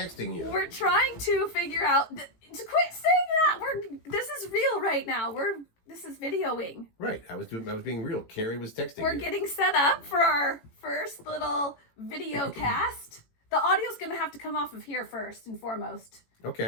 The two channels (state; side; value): late; right; 18 ms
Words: you. We're trying to figure out to quit saying that. This is real right now. This is videoing. Right. I was being real. Carrie was texting We're you. getting set up for our first little video cast. The audio's going to have to come off of here first and foremost.